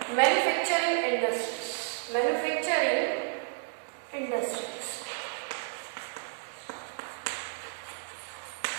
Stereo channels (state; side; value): silent; left; digital silence